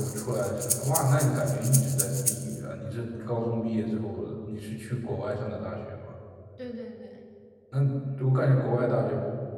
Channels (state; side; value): identical; both; correlation 1.00